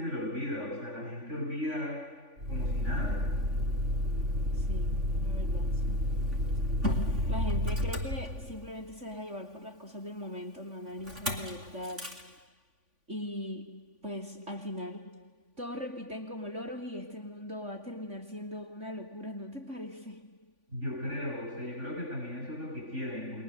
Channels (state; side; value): late; left; 3.5 ms